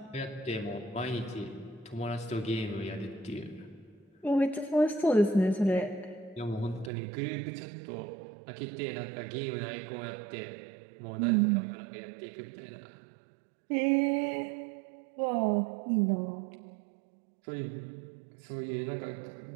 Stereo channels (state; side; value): drops out; left; at 6.9 s